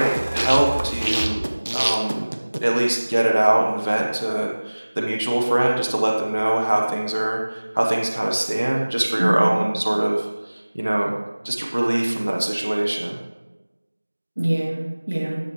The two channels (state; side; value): inverted; both; correlation -1.00